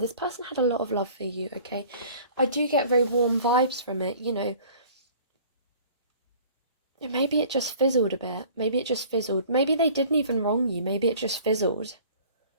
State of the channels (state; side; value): inverted; both; correlation -0.49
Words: this person had a lot of love for you, okay? I do get very warm vibes from it, you know. Maybe it just fizzled a bit. Maybe it just fizzled. Maybe they didn't even wrong you. Maybe it just fizzled.